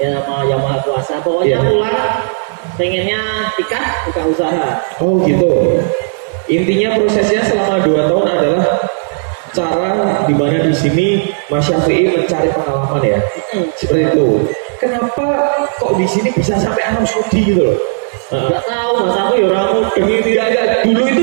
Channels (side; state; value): left; silent; digital silence